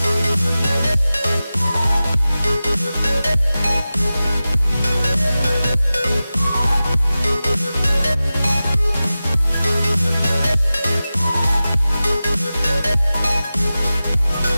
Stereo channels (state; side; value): inverted; both; correlation -0.95